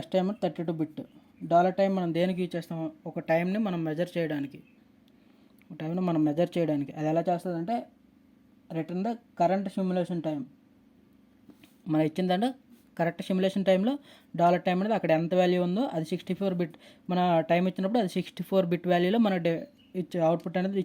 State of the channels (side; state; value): both; identical; correlation 1.00